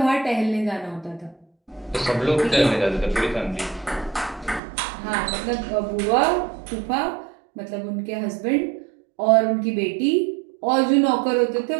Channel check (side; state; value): left; drops out; at 4.6 s